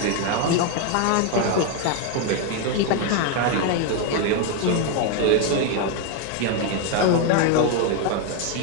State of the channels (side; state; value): both; different; correlation 0.01